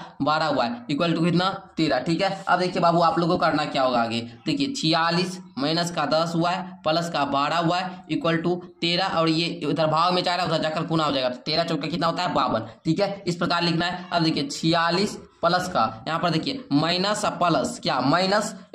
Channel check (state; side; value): identical; both; correlation 1.00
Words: 12y इक्वल टू कितना 13, ठीक है। अब देखिए बाबू आप लोगों को करना क्या होगा आगे, देखिए 46 माइनस का 10y प्लस का 12y इक्वल टू 13 और ये इधर भाव में 4 है उधर जाकर गुना हो जाएगा, 13 चौका कितना होता है 52, ठीक है। इस प्रकार लिखना है। अब देखिए 46 प्लस का यहाँ पर देखिए माइनस प्लस क्या माइनस